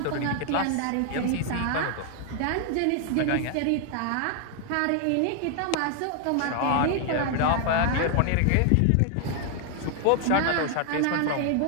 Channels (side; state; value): both; different; correlation 0.00